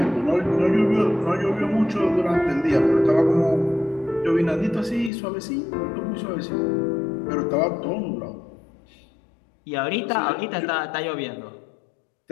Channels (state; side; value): drops out; right; at 5.1 s